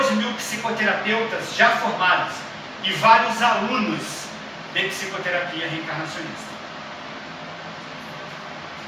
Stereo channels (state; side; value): identical; both; correlation 1.00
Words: psicoterapeutas já formados e vários alunos de psicoterapia reencarnacionista.